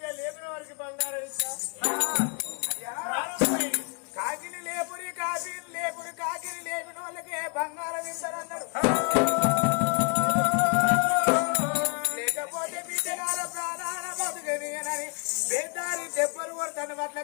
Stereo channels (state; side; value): quieter; right; 39.8 dB